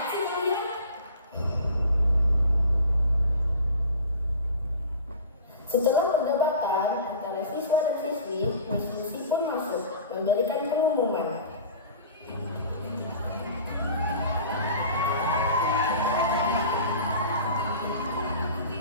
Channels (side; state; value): both; inverted; correlation -0.41